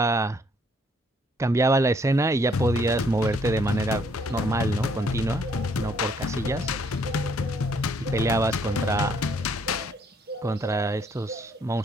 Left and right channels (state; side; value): normal; both; correlation 0.66